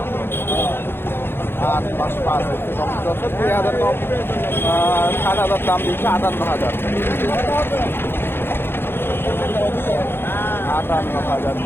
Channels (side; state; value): right; late; 0.11 ms